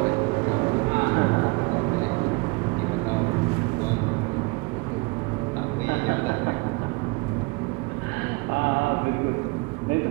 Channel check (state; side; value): quieter; left; 27.1 dB